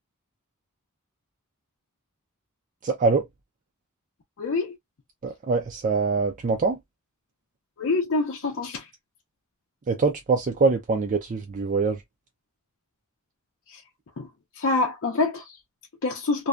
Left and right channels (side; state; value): both; normal; correlation 0.08